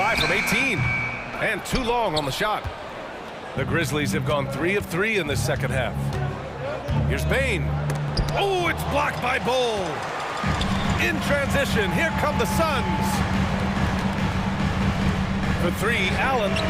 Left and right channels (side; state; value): both; identical; correlation 1.00